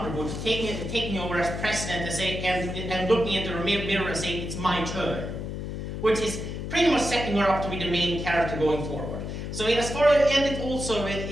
taking over as president and looking into the mirror and saying, "It's my turn," which is pretty much setting her up to be the main character going forward. So as far as, and it also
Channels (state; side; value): noise; left; hum, 6 dB below the sound